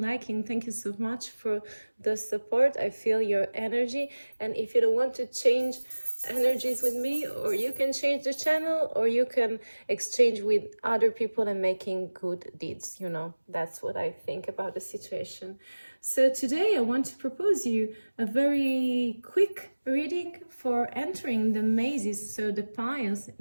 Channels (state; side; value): inverted; both; correlation -1.00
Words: Thank you so much for the support. I feel your energy. And if you don't want to change energies with me, or you can change the channel, or you can exchange with other people and making good deeds, you know, that's what I think about the situation. So today I want to propose you a very quick reading for entering the mazes, so the piles